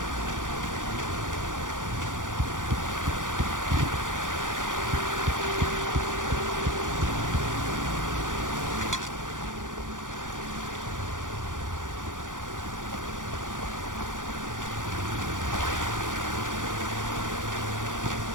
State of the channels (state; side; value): late; left; 0.88 ms